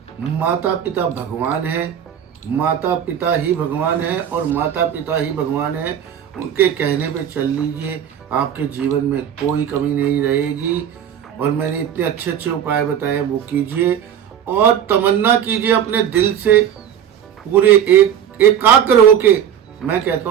माता पिता भगवान है, माता पिता ही भगवान है और माता पिता ही भगवान है, उनके कहने पे चल लीजिए, आपके जीवन में कोई कमी नहीं रहेगी। और मैंने इतने अच्छे अच्छे उपाय बताए वो कीजिए और तमन्ना कीजिए अपने दिल से, पूरे एकाग्र होके। मैं कहता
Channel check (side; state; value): left; quieter; 9.2 dB